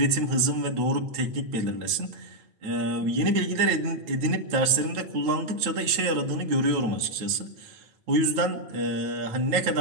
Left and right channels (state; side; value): late; left; 9.1 ms